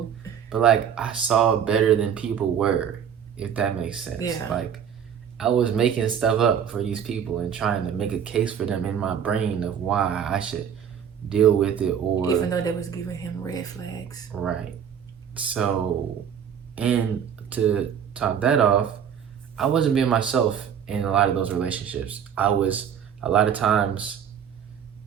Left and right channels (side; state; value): left; quieter; 8.2 dB